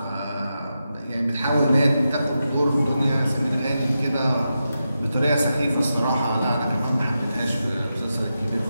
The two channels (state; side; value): inverted; both; correlation -0.88